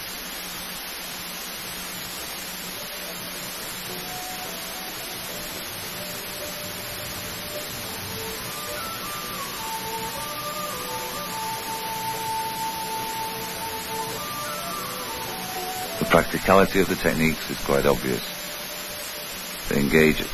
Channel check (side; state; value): both; identical; correlation 1.00